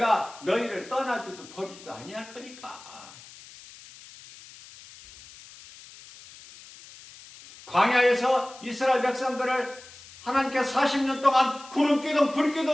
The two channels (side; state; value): left; noise; hiss, 19 dB below the sound